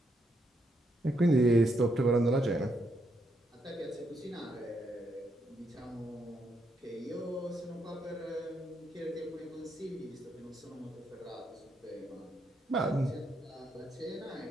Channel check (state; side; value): normal; both; correlation 0.77